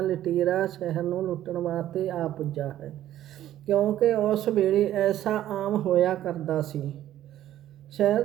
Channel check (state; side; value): quieter; left; 12.6 dB